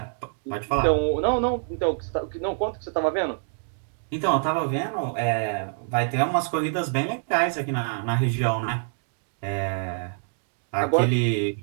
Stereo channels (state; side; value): silent; left; digital silence